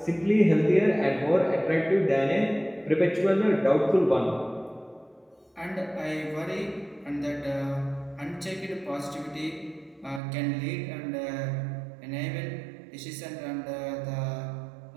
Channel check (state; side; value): drops out; left; at 10.2 s